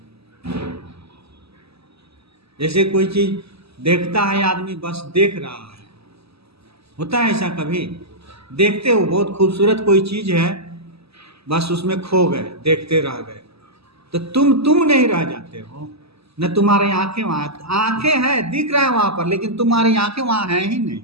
जैसे कोई चीज देखता है आदमी, बस देख रहा है, होता है ऐसा कभी? देखते हो बहुत खूबसूरत कोई चीज है, बस उसमें खो गए, देखते रह गए, तो तुम नहीं रह जाते हो न, तुम्हारी आंखें वहां, आंखें हैं दिख रहा है वहां पर, लेकिन तुम्हारी आंखें वहां हैं ही नहीं,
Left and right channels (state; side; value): late; left; 0.78 ms